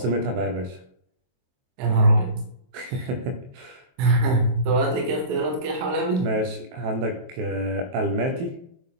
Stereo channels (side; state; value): left; late; 23 ms